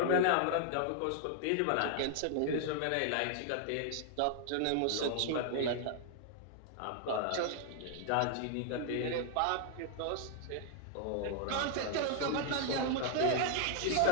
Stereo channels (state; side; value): different; both; correlation -0.01